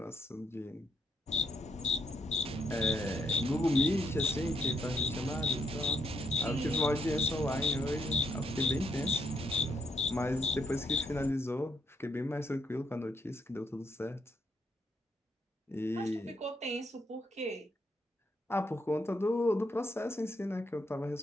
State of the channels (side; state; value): both; normal; correlation 0.74